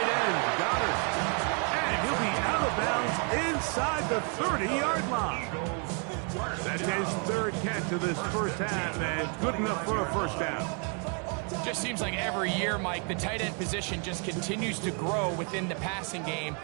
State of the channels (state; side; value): quieter; left; 39.3 dB